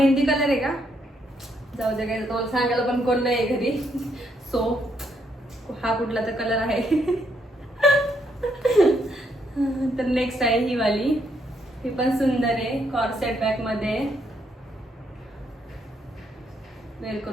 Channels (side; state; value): both; normal; correlation 0.75